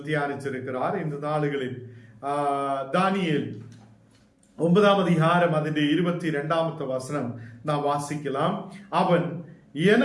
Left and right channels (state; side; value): identical; both; correlation 1.00